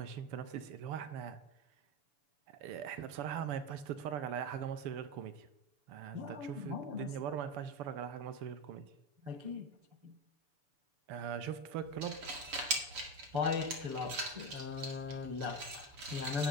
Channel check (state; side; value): late; left; 6.9 ms